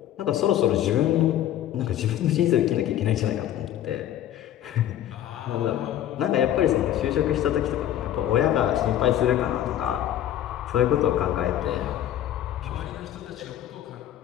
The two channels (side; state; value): right; quieter; 11.7 dB